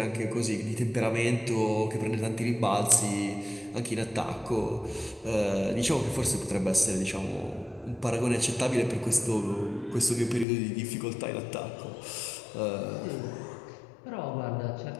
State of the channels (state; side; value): drops out; right; at 10.5 s